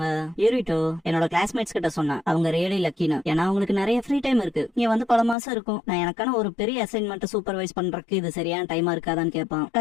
யூரிட்டோ என்னோட கிளாஸ்மேட்ஸ் கிட்ட சொன்னேன், அவங்க ரியலி லக்கின்னு. ஏன்னா அவங்களுக்கு நிறைய ஃப்ரீ டைம் இருக்கு. நீ வந்து பல மாசம் இருக்கும். நான் எனக்கான ஒரு பெரிய அசைன்மெண்ட் சூப்பர்வைஸ் பண்றதுக்கு இது சரியான டைமா இருக்காதான்னு கேட்பான்.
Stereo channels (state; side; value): drops out; right; at 5.4 s